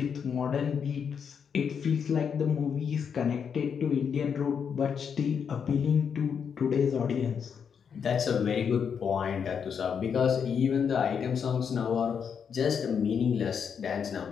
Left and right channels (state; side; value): quieter; right; 7.0 dB